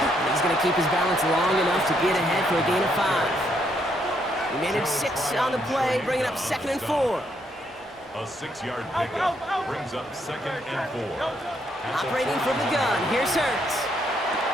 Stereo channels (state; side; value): normal; both; correlation 0.74